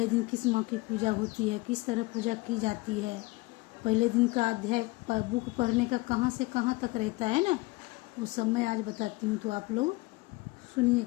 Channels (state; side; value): quieter; right; 22.5 dB